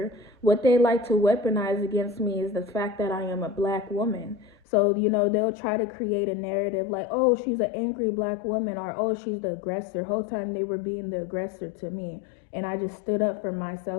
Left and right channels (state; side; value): drops out; right; at 4.5 s